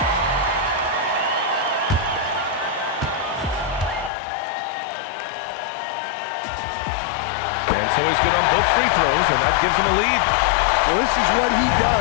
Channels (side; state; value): right; drops out; at 4.1 s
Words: And so he's good on both free throws, and that gives him a lead. Well, this is what he